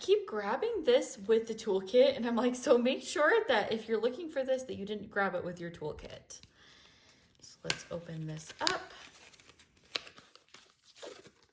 keep grabbing this with the toolkit, and I'm like, so make sure that if you're looking for this, that you didn't grab it with your toolkit. So let's open this up.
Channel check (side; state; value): both; identical; correlation 1.00